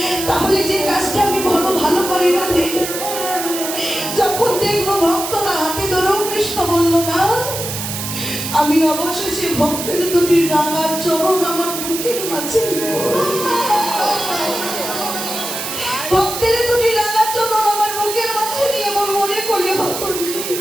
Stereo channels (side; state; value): right; noise; hiss, 5 dB below the sound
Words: তাহলে যে কাজটা আমি বড় ভালো করি না, যখন দেখবো ভক্তরা হাতে ধরেও কৃষ্ণ বললো না, আমি অবশেষে ভক্তের দুটি রাঙা চরণ আমার বুকের মাঝে নেব। ভক্তের দুটি রাঙা চরণ আমার বুকের মাঝে নিয়ে আমার মনে করলে হতো